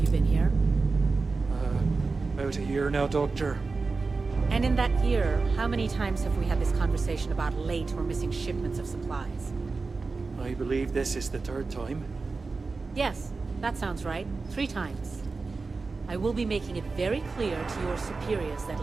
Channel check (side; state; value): left; quieter; 4.1 dB